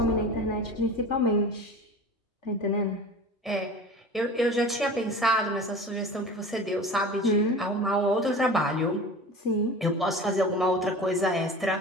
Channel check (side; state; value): both; normal; correlation 0.37